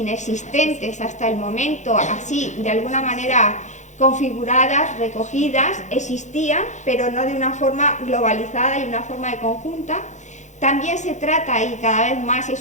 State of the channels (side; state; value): right; late; 0.35 ms